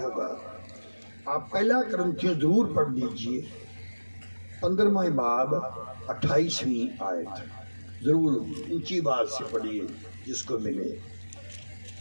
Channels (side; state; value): both; inverted; correlation -1.00